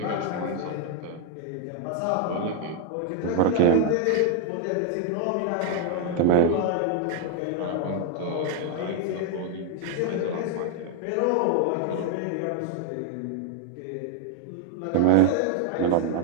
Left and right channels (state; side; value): different; both; correlation 0.00